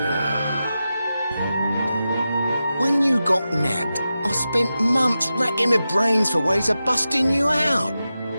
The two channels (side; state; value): both; inverted; correlation -0.92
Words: When you got nabbed, I spent months racking my brains for ways of busting you out.